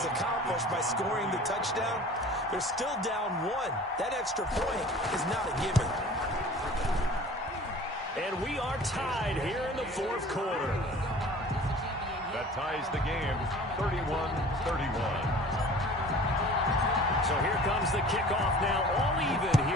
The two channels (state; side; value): normal; both; correlation 0.45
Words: accomplished by scoring the touchdown, they're still down 1. That extra point is not a given. And we are tied here in the 4th quarter. That ties the game, 31-31. So here comes the kickoff now, all even